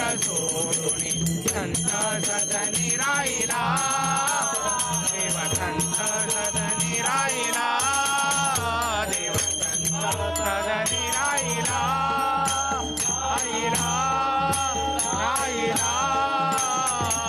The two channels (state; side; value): identical; both; correlation 1.00